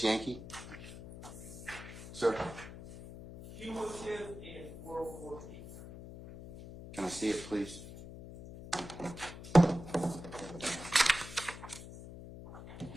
Yankee? Sir, Cumulative and 404 P. can I see it, please?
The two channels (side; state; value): left; noise; hum, 13 dB below the sound